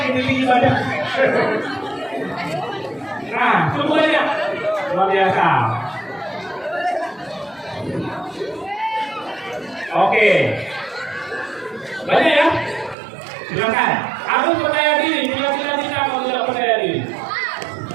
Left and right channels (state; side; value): drops out; left; at 13.0 s